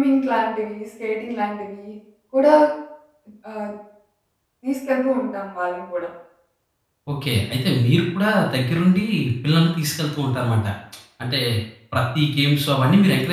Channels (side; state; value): both; identical; correlation 1.00